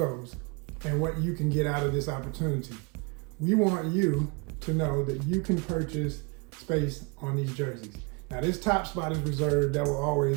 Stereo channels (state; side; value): quieter; left; 29.9 dB